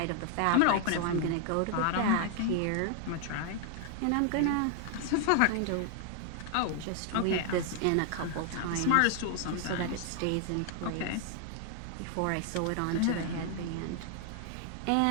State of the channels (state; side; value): different; both; correlation 0.00